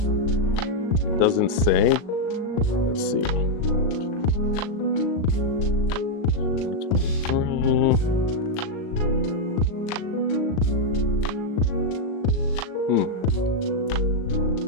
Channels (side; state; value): right; late; 38 ms